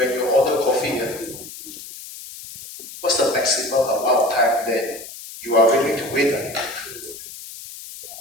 you order coffee, what's the maximum amount of time that you are willing to wait?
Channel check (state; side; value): noise; left; hiss, 14 dB below the sound